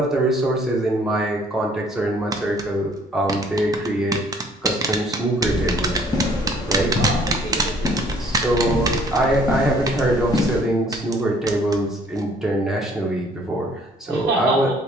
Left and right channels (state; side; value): normal; both; correlation 0.59